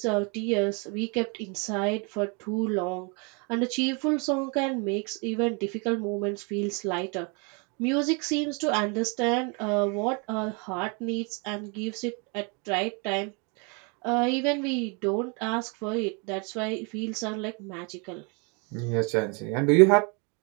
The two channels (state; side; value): quieter; left; 33.7 dB